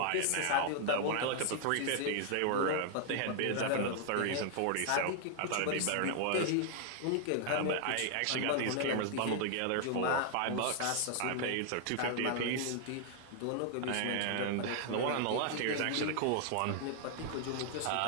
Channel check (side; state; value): both; different; correlation 0.00